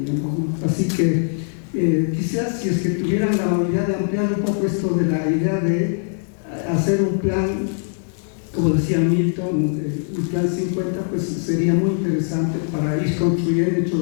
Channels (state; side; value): silent; right; 65 dB below the other